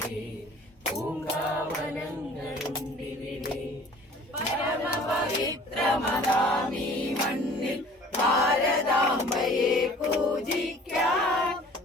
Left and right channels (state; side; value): normal; both; correlation 0.49